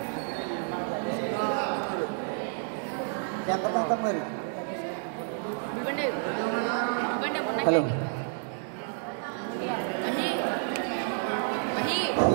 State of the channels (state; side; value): silent; left; 58 dB below the other